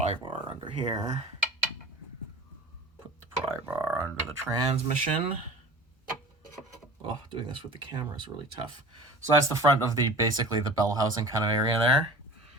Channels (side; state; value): both; normal; correlation 0.40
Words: bar under here. Put the pry bar under the transmission. Oh, doing this with the camera is really tough. So that's the front of basically the bell housing kind of area there.